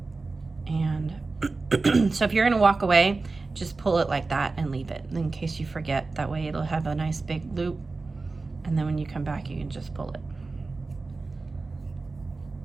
And so if you're gonna walk away, just pull it like that and leave it in case you forget. That way it'll have a nice big loop, and then when you come back, you can just pull it.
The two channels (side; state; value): left; quieter; 3.8 dB